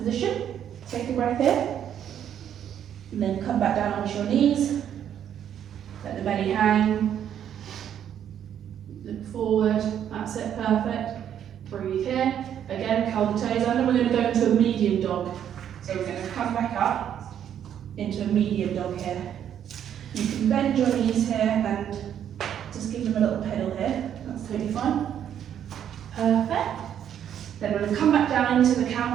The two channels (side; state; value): left; quieter; 9.6 dB